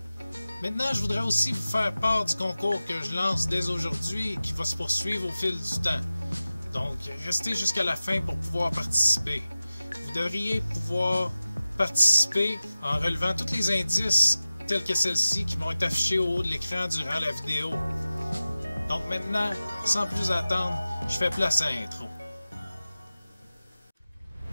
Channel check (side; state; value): both; inverted; correlation -0.96